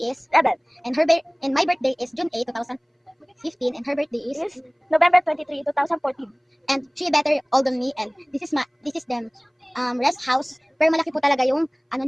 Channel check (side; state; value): both; identical; correlation 1.00